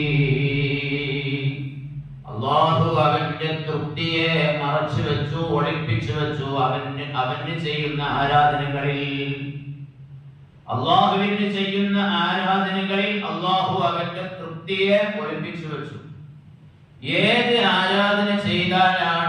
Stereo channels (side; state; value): both; identical; correlation 1.00